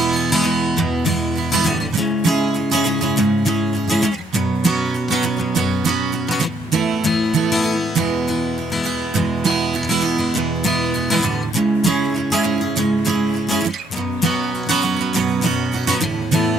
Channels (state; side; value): normal; both; correlation 0.72